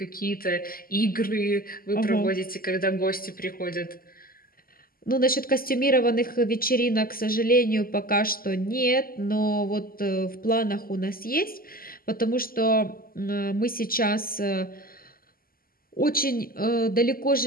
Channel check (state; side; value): late; right; 0.42 ms